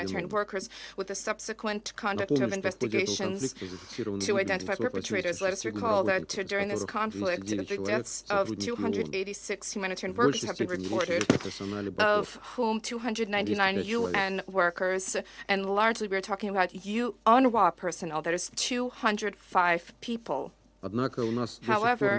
workers, with the subsequent conduct of investigations to identify perpetrators. Let us recall that during this conflict, the deaths of 286 humanitarian workers have been reported, of whom 299 UN workers, and largely we're talking about UNRWA personnel. That is 205 people.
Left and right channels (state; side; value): identical; both; correlation 1.00